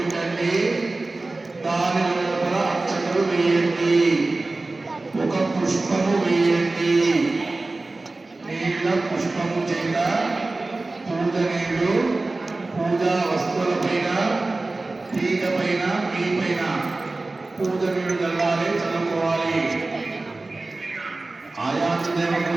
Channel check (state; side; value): quieter; left; 3.2 dB